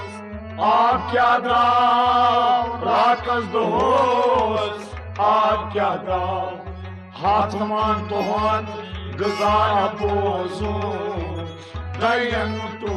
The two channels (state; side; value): identical; both; correlation 1.00